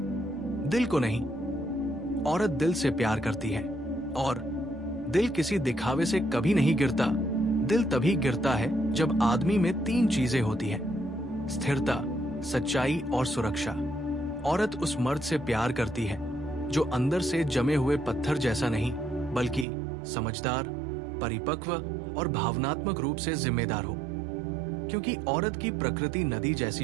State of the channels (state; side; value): drops out; left; at 19.7 s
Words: दिल को नहीं। औरत दिल से प्यार करती है और दिल किसी दिखावे से कभी नहीं गिरता। दिल तभी गिरता है जब आदमी में 3 चीजें होती हैं: स्थिरता, सच्चाई और सुरक्षा। औरत उस मर्द से प्यार करती है जो अंदर से जमे हुए पत्थर जैसा नहीं, बल्कि समझदार, परिपक्व और भावनात्मक रूप से जिम्मेदार हो। क्योंकि औरत की प्रकृति नदी